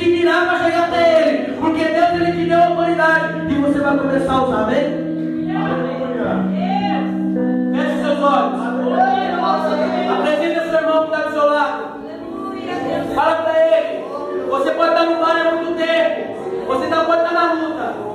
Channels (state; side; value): identical; both; correlation 1.00